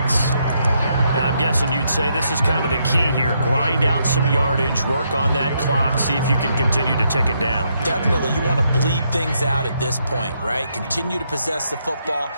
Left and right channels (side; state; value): both; inverted; correlation -0.76